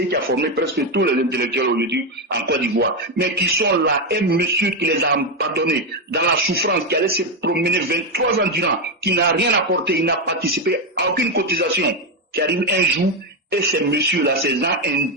qui a formé presque tous les intellectuels aujourd'hui en Côte d'Ivoire, mais qui sont là, un monsieur qui les a abandonnés dans la souffrance, qui allait se promener 23 ans durant, qui n'a rien apporté, il n'a participé à aucune cotisation, qui arrive un jour, et ces messieurs-là, ces gens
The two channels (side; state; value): both; normal; correlation 0.08